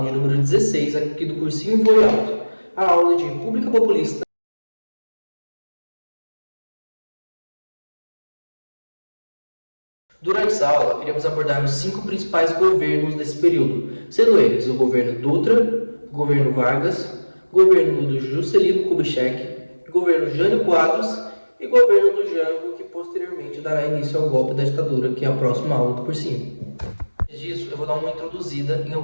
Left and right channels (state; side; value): inverted; both; correlation -1.00